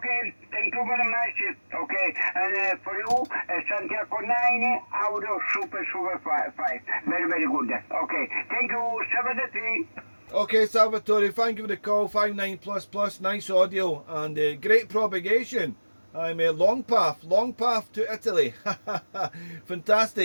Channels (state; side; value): inverted; both; correlation -1.00